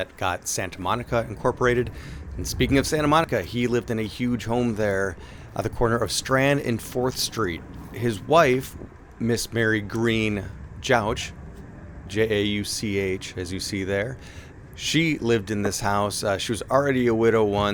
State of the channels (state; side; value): identical; both; correlation 1.00